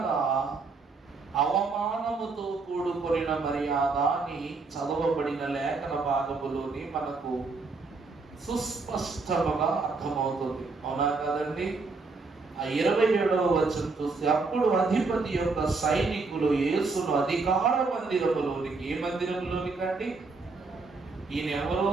అవమానముతో కూడుకొనిన మర్యాద అని చదవబడిన లేఖన భాగములోని మనకు సుస్పష్టముగా అర్థమవుతుంది. అవునా కదండి? ఆ 27వ వచనం చూస్తే, అప్పుడు అధిపతి యొక్క సైనికులు యేసును అధికార మందిరములోనికి, ఏ మందిరములోనికి అండి? ఈయన ఎవరు?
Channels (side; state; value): left; quieter; 4.1 dB